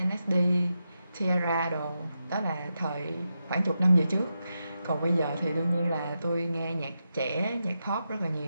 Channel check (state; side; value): inverted; both; correlation -0.88